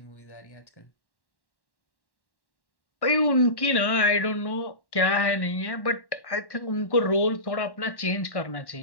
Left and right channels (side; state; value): right; late; 1.1 ms